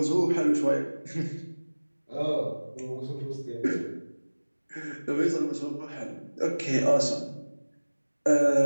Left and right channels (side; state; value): both; inverted; correlation -1.00